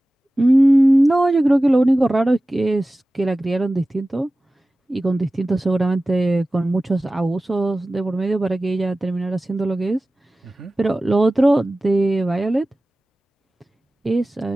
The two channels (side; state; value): both; normal; correlation 0.97